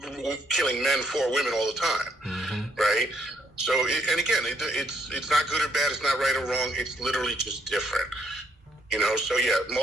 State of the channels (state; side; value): normal; both; correlation 0.70